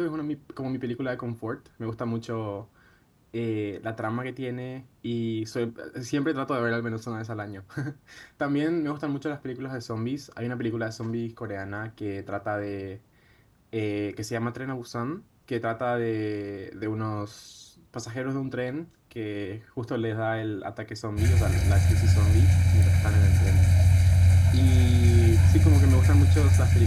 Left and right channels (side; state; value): both; identical; correlation 1.00